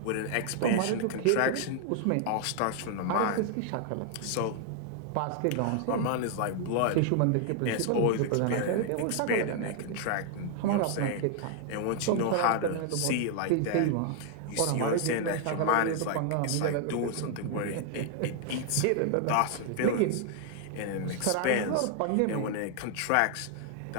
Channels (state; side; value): different; both; correlation 0.00